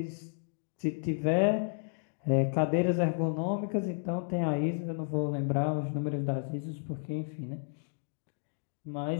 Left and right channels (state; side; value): silent; right; digital silence